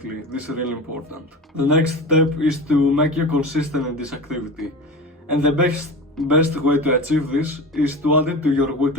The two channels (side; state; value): both; normal; correlation 0.30